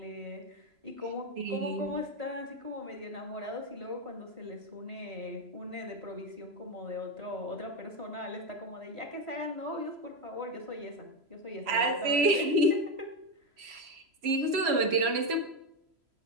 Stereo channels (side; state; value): left; late; 3.0 ms